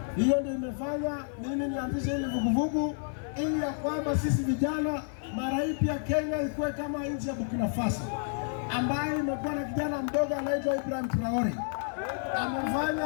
Hiyo ndio imefanya mimi nianzishe ile vuguvugu, ili ya kwamba sisi vijana mara hii pia Kenya ikuwe kama nchi ya Burkina Faso, ambayo imekuwa na kijana mdogo anaitwa Ibrahim Traore.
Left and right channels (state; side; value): silent; right; digital silence